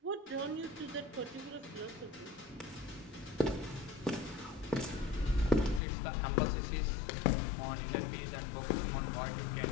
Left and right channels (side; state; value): right; drops out; at 5.8 s